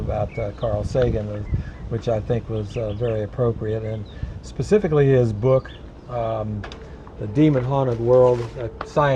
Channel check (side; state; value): both; identical; correlation 1.00